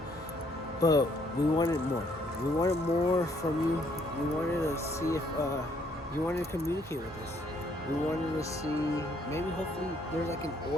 but we wanted more. We wanted more from you. We wanted to see if you wanted to communicate with us. We wanted to see, maybe hopefully there's like an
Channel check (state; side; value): normal; both; correlation 0.67